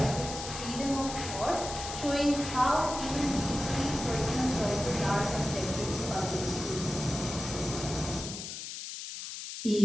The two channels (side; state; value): left; noise; hiss, 8 dB below the sound